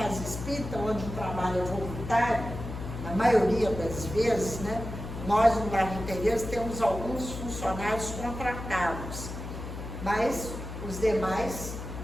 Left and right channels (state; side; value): noise; left; hum, 8 dB below the sound